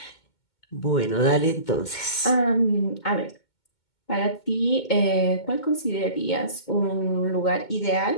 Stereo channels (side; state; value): right; late; 2.2 ms